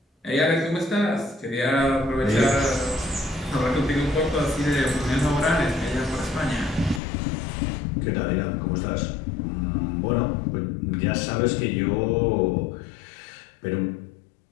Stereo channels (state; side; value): drops out; right; at 7.0 s